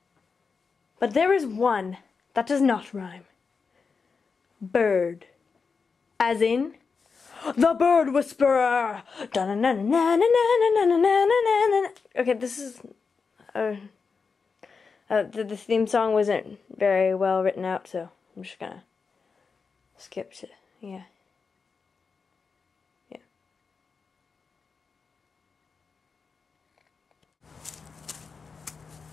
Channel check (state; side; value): quieter; right; 5.1 dB